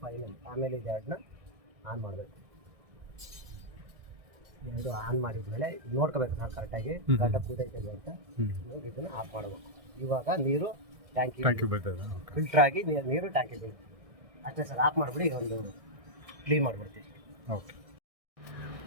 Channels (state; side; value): late; left; 1.6 ms